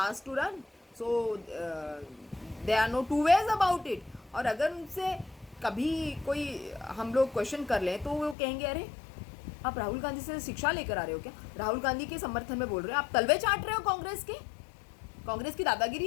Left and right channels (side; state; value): right; drops out; at 8.3 s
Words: to run, so there are no two ways about it। और अगर उनसे कभी कोई हम लोग क्वेश्चन कर लें तो वो कहेंगे अरे आप राहुल गांधी से शिक्षा लेकर आ रहे हो क्या? राहुल गांधी के समर्थन में बोल रहे हो, आप तलवे चाट रहे हो कांग्रेस के, कांग्रेस की